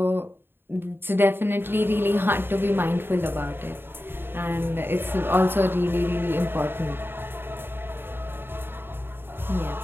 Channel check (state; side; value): late; left; 0.10 ms